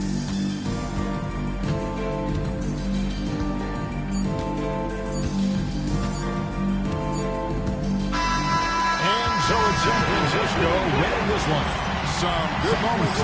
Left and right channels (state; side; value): identical; both; correlation 1.00